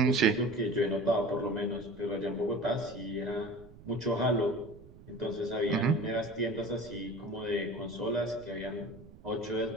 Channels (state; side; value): noise; right; rumble, 20 dB below the sound